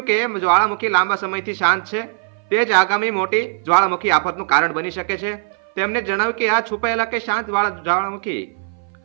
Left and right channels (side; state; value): left; silent; 58 dB below the other